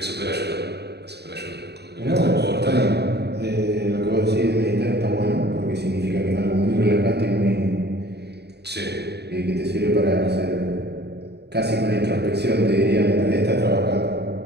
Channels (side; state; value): left; late; 0.48 ms